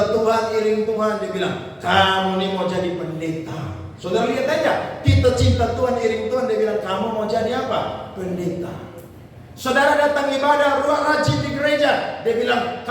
Tuhan, iring Tuhan, dia bilang, kamu nih mau jadi pendeta. Saudara lihat aja, kita cinta Tuhan, iring Tuhan, dia bilang, kamu mau jadi apa? Pendeta. Saudara datang ibadah, rajin di gereja, dia bilang,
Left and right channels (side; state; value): both; identical; correlation 1.00